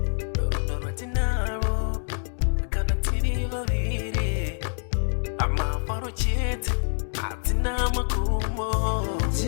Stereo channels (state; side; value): silent; right; 61 dB below the other